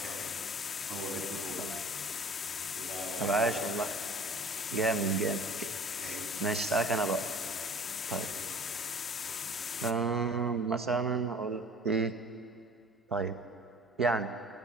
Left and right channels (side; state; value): both; normal; correlation 0.45